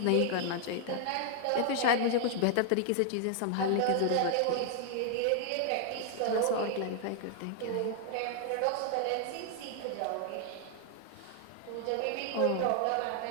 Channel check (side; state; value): both; different; correlation 0.00